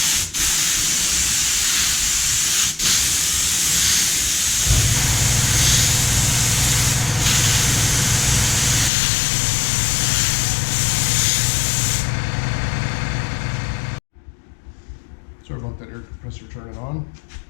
Sorry about that air compressor turning on.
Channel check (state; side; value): drops out; right; at 8.9 s